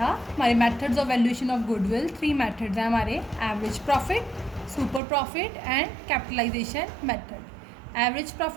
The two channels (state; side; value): drops out; left; at 5.0 s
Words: हमारे methods of valuation of goodwill 3 methods हैं हमारे, average profit, super profit and capitalization method. Average